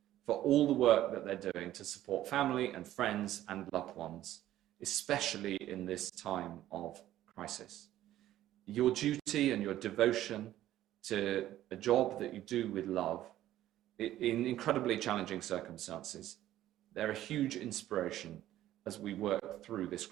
for all the work that they're doing to support family and friends and loved ones, especially in this time of crisis. Your duty and your devotion to a job that you do with love in incredibly challenging circumstances, they're a huge inspiration as we work through this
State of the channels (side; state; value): left; quieter; 13.5 dB